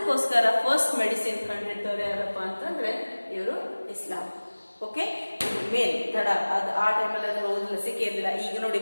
ಫಸ್ಟ್ ಮೆಡಿಸಿನ್ ಕಂಡಿಡ್ದವ್ರು ಯಾರಪ್ಪ ಅಂತಂದ್ರೆ ಇವರು ಇಸ್ಲಾಂ. ಮೇನ್ ತಡ ಅದು ಆ ಟೈಮಲ್ಲಿ ಅದ್ರ ಲಸಿಕೆ ಇರಲಿಲ್ಲ. ಈಗ ನೋಡಿ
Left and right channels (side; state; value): both; inverted; correlation -1.00